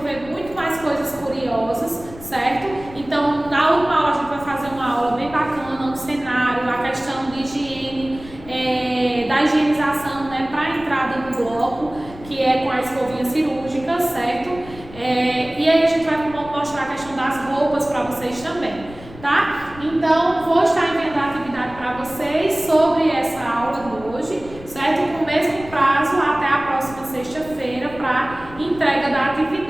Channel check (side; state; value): left; noise; rumble, 17 dB below the sound